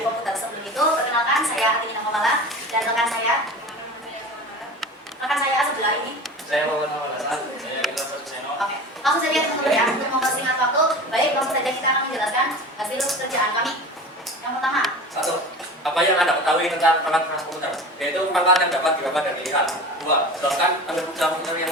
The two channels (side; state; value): both; normal; correlation 0.34